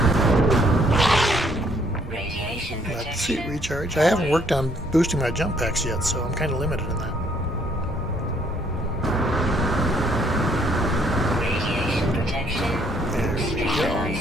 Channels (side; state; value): both; normal; correlation 0.66